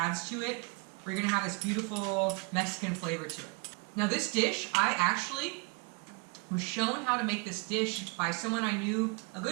to it. We're going to have this beautiful Mexican flavor to it. Now this dish, I actually was shown how to make this dish by someone I knew, a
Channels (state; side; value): quieter; left; 32.1 dB